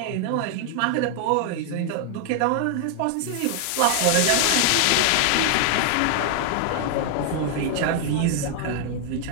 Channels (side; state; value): both; different; correlation 0.00